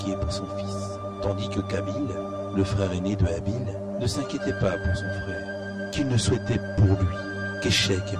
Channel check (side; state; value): both; identical; correlation 1.00